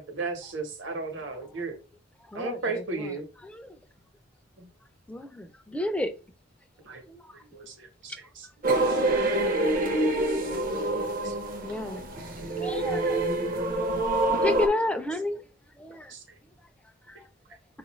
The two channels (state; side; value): normal; both; correlation 0.39